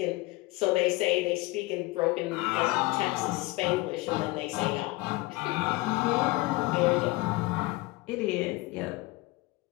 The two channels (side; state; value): right; quieter; 21.8 dB